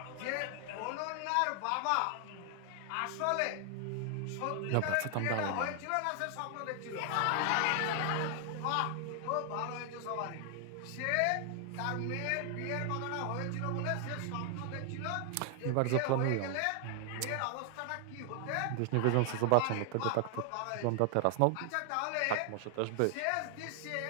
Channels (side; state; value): both; different; correlation 0.00